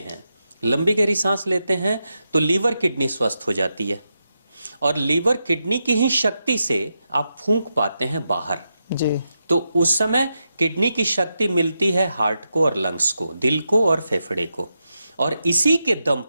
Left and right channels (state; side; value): inverted; both; correlation -0.86